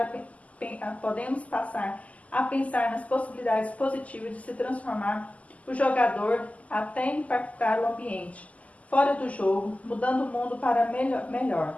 a pensar nas possibilidades positivas de se transformar o jogador até impactar o ambiente fora do jogo, mudando o mundo para melhor.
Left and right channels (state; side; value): late; right; 0.071 ms